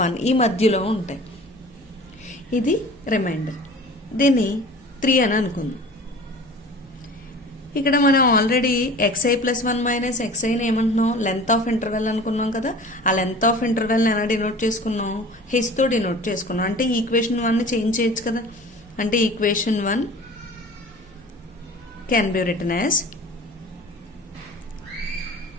1 ఈ మధ్యలో ఉంటాయి. ఇది రిమైండర్. దీన్ని 3 అని అనుకుందాం. ఇక్కడ మనం ఆల్రెడీ ఎక్స్ఐ ప్లస్ 1 మైనస్ ఎక్స్ఐని ఏమంటున్నాం, లెంత్ ఆఫ్ ఇంటర్వెల్ అనుకున్నాం కదా. ఆ లెంత్ ఆఫ్ ఇంటర్వెల్ని ఎలా డినోట్ చేసుకున్నాం, హెచ్తో డినోట్ చేసుకున్నాం. అంటే ఈక్వేషన్ 1ని చేంజ్ చేయొచ్చు కదా. అంటే equation 1 can be written as,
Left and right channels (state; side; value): normal; both; correlation 0.42